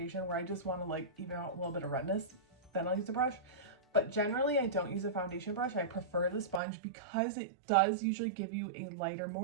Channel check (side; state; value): left; drops out; at 6.6 s